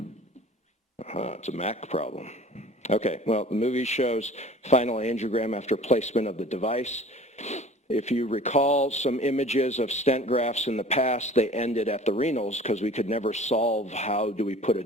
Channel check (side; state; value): both; normal; correlation 0.45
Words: a Mac problem. Okay, well, the movie shows final angiogram after placement of the device. If you recall some images of stent grafts in the past, they ended at the renals because we could never solve how do we put a